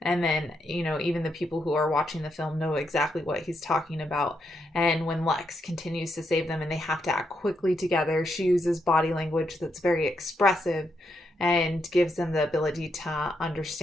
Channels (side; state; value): both; normal; correlation 0.80